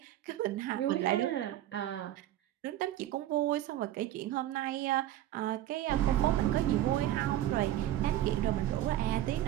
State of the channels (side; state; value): left; quieter; 13.2 dB